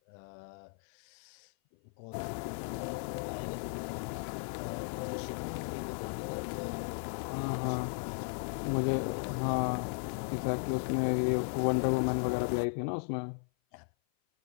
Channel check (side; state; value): right; silent; 54 dB below the other